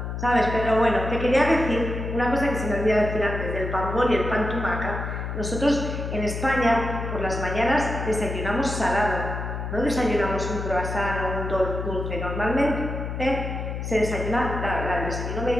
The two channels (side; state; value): left; noise; hum, 5 dB below the sound